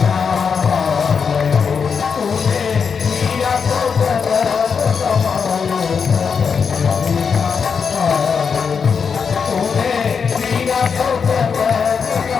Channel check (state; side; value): quieter; right; 6.1 dB